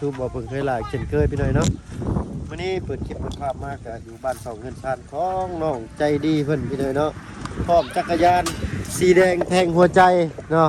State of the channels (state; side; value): identical; both; correlation 1.00